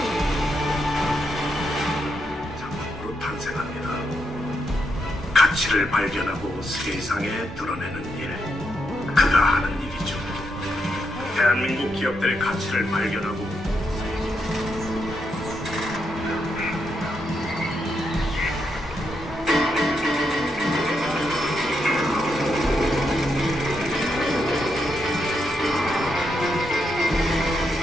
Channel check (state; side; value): normal; both; correlation 0.81